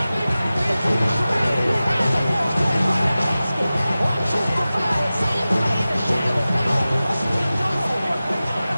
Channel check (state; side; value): inverted; both; correlation -0.96